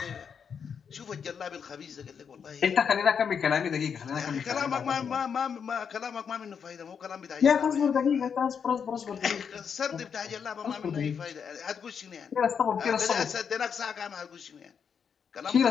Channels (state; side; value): quieter; right; 6.9 dB